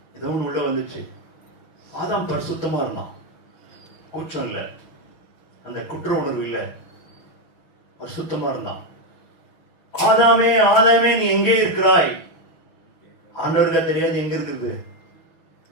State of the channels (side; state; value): right; late; 6.2 ms